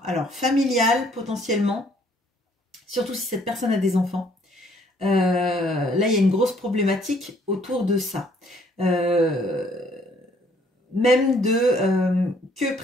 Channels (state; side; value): normal; both; correlation 0.63